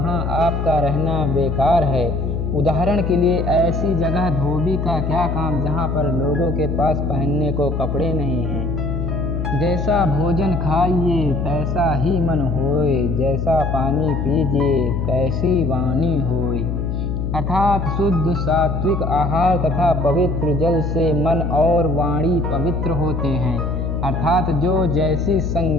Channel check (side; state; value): left; noise; hum, 1 dB below the sound